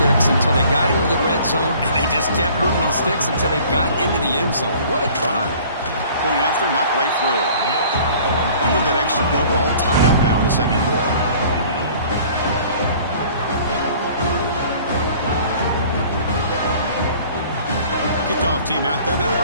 until they got into the red zone, and they just kept moving the sticks until they got into the end zone. What a drive. Point after, knocked right through. And with that extra point, we're all tied up now in the second quarter. Kickoff team out there, they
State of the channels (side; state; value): both; inverted; correlation -0.50